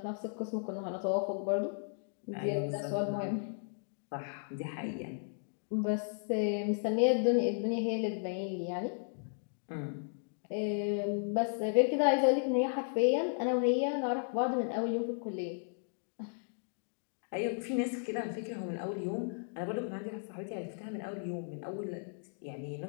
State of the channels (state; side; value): silent; right; digital silence